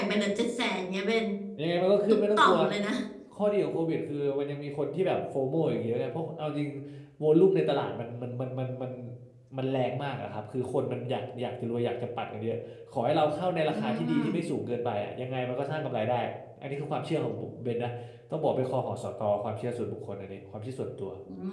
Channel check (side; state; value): both; identical; correlation 1.00